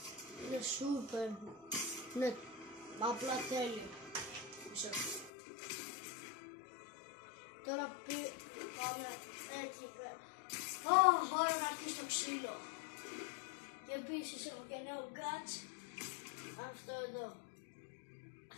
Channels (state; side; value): drops out; right; at 5.3 s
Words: Είναι super. Ναι, απλά τέλειο. Τώρα πάμε εκεί πέρα. Ώρα να αρχίσει το ξύλο. Και επίσης έχω και νέο gadget. Αυτό εδώ.